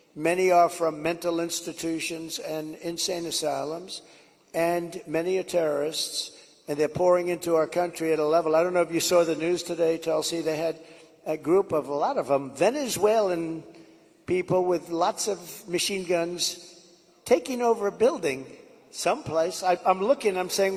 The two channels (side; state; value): both; identical; correlation 1.00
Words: Many are from mental institutions and insane asylums, and many are terrorists, and they're pouring into our country at a level. I don't know if you saw the news today, Tulsi. They had a group of, a lot of them, Venezuelan people with lots of machine guns taking over a building someplace. I'm looking, I'm